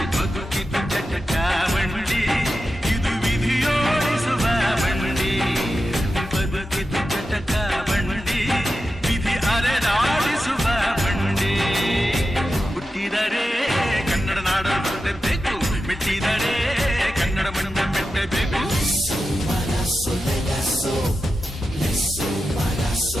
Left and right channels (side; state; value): both; normal; correlation 0.91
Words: ಬದುಕಿದು ಚಟ ಬಂಡಿ, ಇದು ವಿಧಿಯೋಡಿಸುವ ಬಂಡಿ. ಬದುಕಿದು ಚಟ ಬಂಡಿ, ವಿಧಿ ಅರೆದಾಡಿಸುವ ಬಂಡಿ. ಹುಟ್ಟಿದರೆ ಕನ್ನಡ ನಾಡಲು ಬೇಕು, ಮೆಚ್ಚಿದರೆ ಕನ್ನಡ ಮಣ್ಣು ಬೆಟ್ಟಬೇಕು.